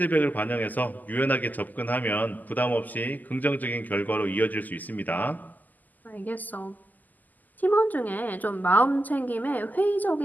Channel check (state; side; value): late; right; 0.083 ms